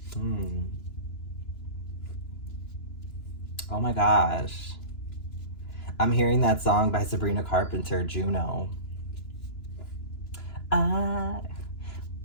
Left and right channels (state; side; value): late; right; 2.9 ms